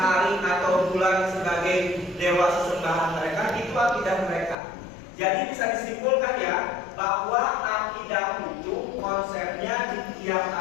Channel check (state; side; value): drops out; right; at 4.5 s